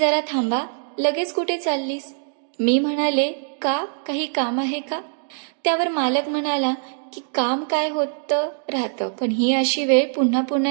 थांबा, लगेच कुठे चाललीस? मी म्हणाले का, काही काम आहे का? त्यावर मालक म्हणाला की काम काय होतं राहतं, पण ही अशी वेळ पुन्हा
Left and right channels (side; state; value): left; silent; digital silence